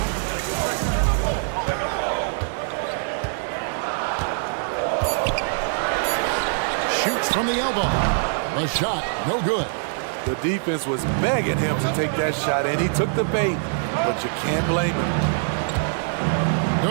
Shoots from the elbow. A shot, no good. The defense was begging him to take that shot, and he took the bait, but you can't blame him.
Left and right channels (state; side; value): silent; left; 63 dB below the other